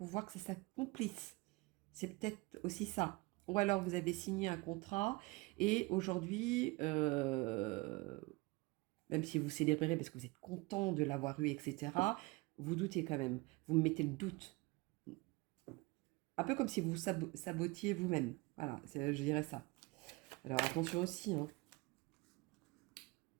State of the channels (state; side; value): quieter; left; 23.9 dB